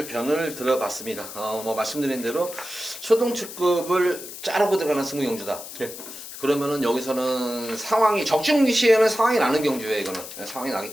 편을 들어봤습니다. 뭐 말씀드린 대로 초등축급을 자르고 들어가는 승부경주다. 예. 그러면은 여기서는 상황이 적중 시에는 상황이 나는 경주예요. 이거는 상황이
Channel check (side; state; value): left; noise; hiss, 12 dB below the sound